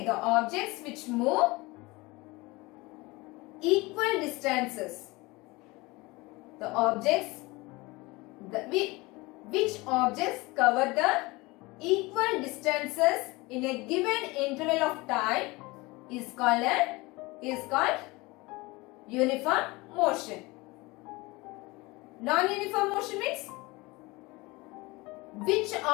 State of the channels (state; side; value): quieter; right; 23.2 dB